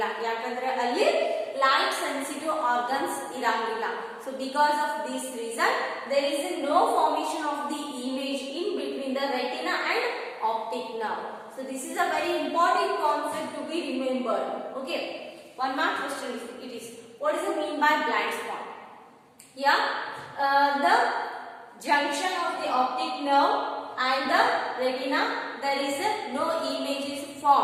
ಯಾಕಂದ್ರೆ ಅಲ್ಲಿ light sensitive organs ಇರಂಗಿಲ್ಲ. So because of this reason there is no formation of the image in between the retina and optic nerve. So this is a very important concept to be remembered. Okay, one more question it is, what is the mean by blind spot? Yeah, the junction of the optic nerve and the retina, there is no image is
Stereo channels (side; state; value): both; identical; correlation 1.00